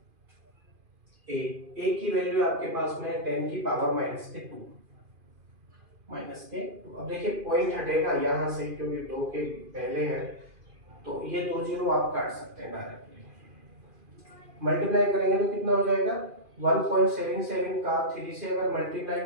ए की वैल्यू आपके पास में है 10 की पावर माइनस के 2 अब देखिए पॉइंट हटेगा यहाँ से क्योंकि 2 के पहले है, तो ये 2 जीरो आप काट सकते हैं डायरेक्टली। मल्टीप्लाई करेंगे तो कितना हो जाएगा 1.77 का 3 से अगर मल्टीप्लाई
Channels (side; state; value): left; late; 2.5 ms